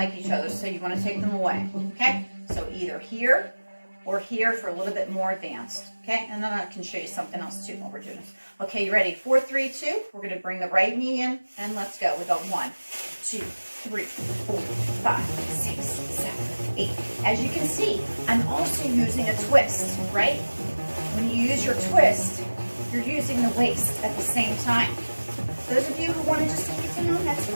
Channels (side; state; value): both; inverted; correlation -1.00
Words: each other, so you wanna take them away, okay? So either here or here for a little bit more advanced, okay? And then I can show you something else too while we're doing this. Okay, you ready? 4, 3, 2. We're gonna bring the right knee in and let's go. We go 1, 2, 3, 4, 5, 6, 7, 8. As you can see, I'm also using a twist, right? When you use your twist, you're using the waist at the same time. Those of you who want to just take it down, that's